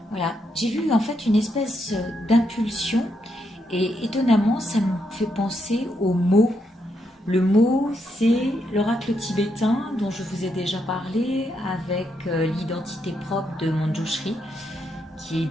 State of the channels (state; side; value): normal; both; correlation 0.79